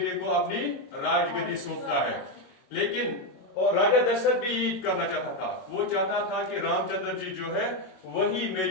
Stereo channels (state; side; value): late; right; 22 ms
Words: को अपनी राजगद्दी सौंपता है। लेकिन और राजा दशरथ भी यही करना चाहता था। वो चाहता था कि रामचंद्र जी जो है वही